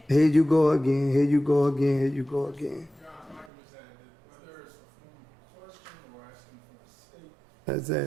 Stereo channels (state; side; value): drops out; left; at 3.5 s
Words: Here you go again. Here you go again. Here you go again. Whether it's a formal question or asking for a statement, That's